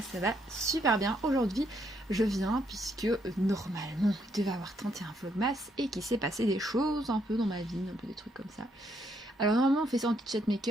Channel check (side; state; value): both; normal; correlation 0.74